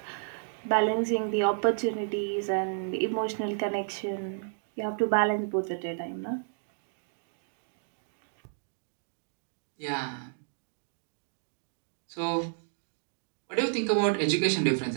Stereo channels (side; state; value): left; silent; digital silence